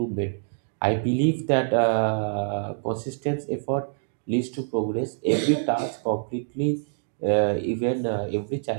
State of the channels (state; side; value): silent; left; digital silence